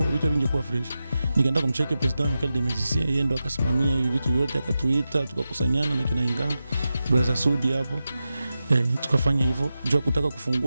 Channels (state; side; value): inverted; both; correlation -0.92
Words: vitu vingekuwa fresh. Nikaenda kumcheki president Michael de Medici, yeye ndo akasimamia hivi vitu vyote, akatuita, tukakusanyana na kina Inga, brother Sudi hapo. Tukafanya hivyo. Jua kutaka